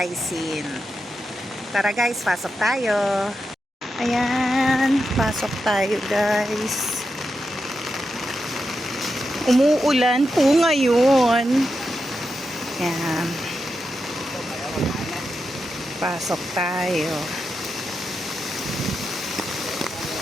Sin. Tara guys, pasok tayo. Ayan, pasok tayo guys. Umuulan po ngayon. Ayan. Pasok tayo.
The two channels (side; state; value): both; normal; correlation 0.87